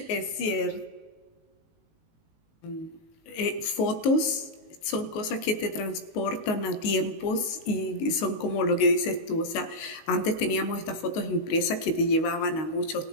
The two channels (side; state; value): right; late; 19 ms